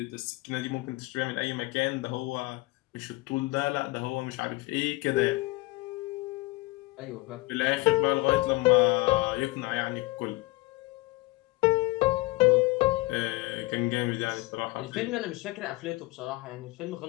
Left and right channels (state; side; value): quieter; right; 22.1 dB